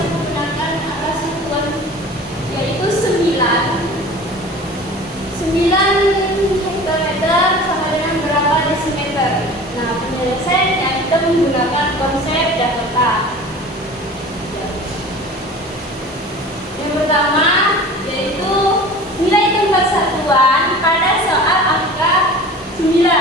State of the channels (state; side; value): normal; both; correlation 0.40